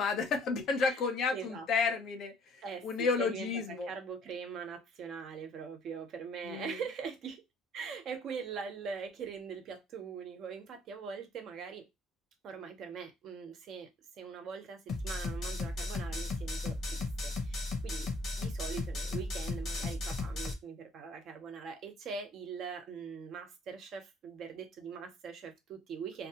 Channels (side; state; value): both; normal; correlation 0.58